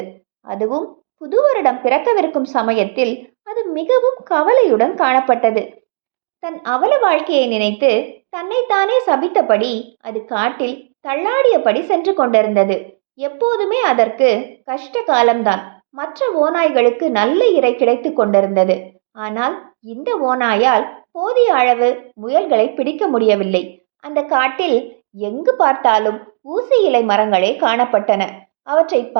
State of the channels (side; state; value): left; silent; digital silence